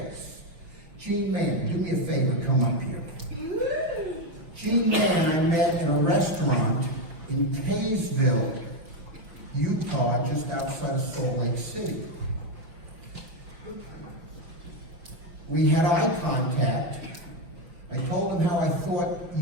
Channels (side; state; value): left; late; 6.1 ms